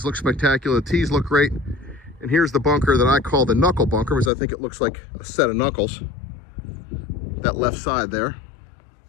look spectacular, the tees look great. And here's the bunker that I call the knuckle bunker, because I think it looks like a set of knuckles. That left side there.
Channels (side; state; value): right; drops out; at 4.3 s